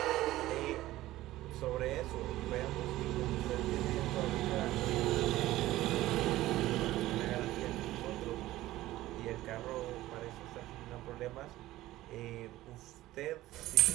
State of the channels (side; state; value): left; quieter; 16.1 dB